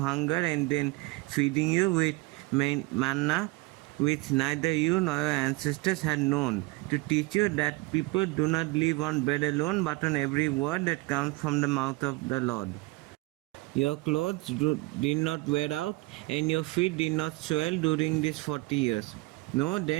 and then feeding you with manna, which neither you nor your ancestors had known, to teach you that people do not live on bread alone, but on every word that comes from the mouth of the Lord. Your clothes did not wear out, and your feet did not swell during these 40 years. Know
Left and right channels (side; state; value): left; quieter; 23.1 dB